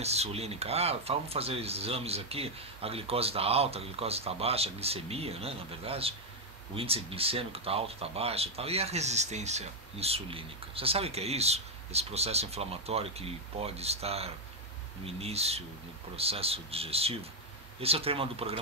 insulínica? Ah, vamos fazer exames aqui, a glicose está alta, a glicose está baixa, a glicemia, né, na verdade, o índice glicêmico está alto, está baixo e tal. E a resistência insulínica? Você sabe o que é isso? Esse processo inflamatório que pode estar no início, no processo digestivo? Esse é o tema do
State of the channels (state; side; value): normal; both; correlation 0.02